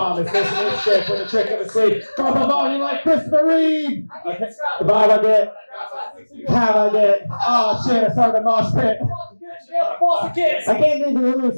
It's this shit with a trick of a sleep. Drop a volume like Christopher Reeve. Okay, the vibe I get. How I get. Oh, shit, I started a mosh pit. I can't need to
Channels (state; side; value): inverted; both; correlation -1.00